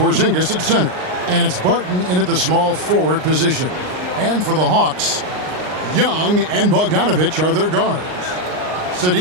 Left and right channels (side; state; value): left; late; 39 ms